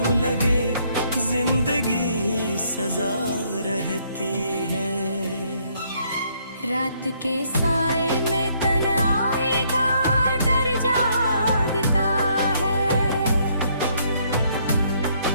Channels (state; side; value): inverted; both; correlation -0.69